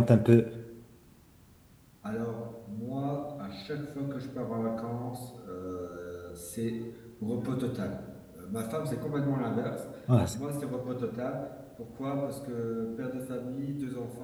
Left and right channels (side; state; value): both; identical; correlation 1.00